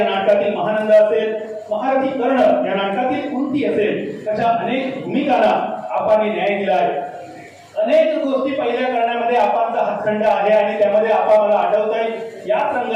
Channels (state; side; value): identical; both; correlation 1.00